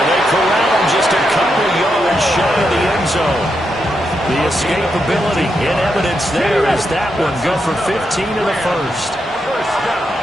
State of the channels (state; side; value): normal; both; correlation 0.83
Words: they corral him just a couple yards shy of the end zone. The escapability in evidence there as that one good for 15 in the first. First down.